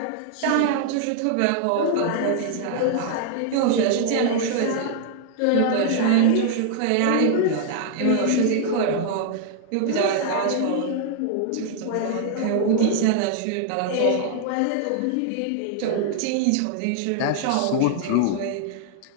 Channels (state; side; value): different; both; correlation -0.01